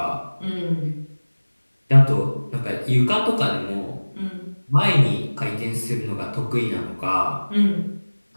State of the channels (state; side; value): inverted; both; correlation -1.00